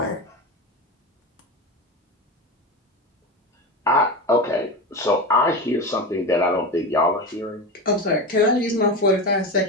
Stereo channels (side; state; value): both; normal; correlation 0.22